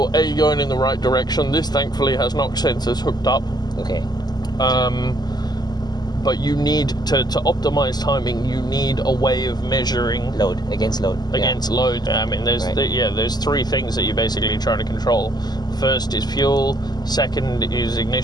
going in the right direction. This thankfully has knock sensors hooked up. Okay. But you need to optimize timing. You need a way of measuring load against load. I mean, there's three things that you're basically trying to control. First is fuel. Second is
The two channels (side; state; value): right; late; 0.20 ms